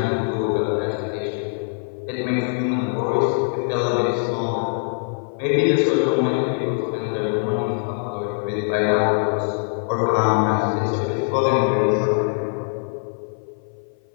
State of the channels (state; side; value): silent; right; 56 dB below the other